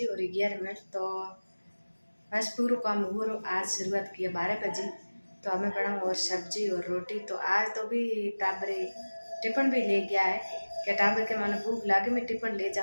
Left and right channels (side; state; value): both; inverted; correlation -1.00